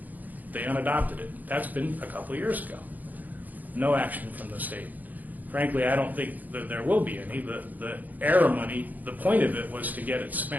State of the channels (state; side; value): late; left; 0.081 ms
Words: They unadopted it. That's been a couple of years ago. No action from the state. Frankly, I don't think that there will be any. The ARRA money, the point of it was to get it